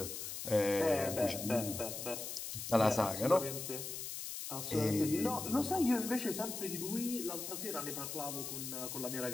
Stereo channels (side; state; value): left; noise; hiss, 6 dB below the sound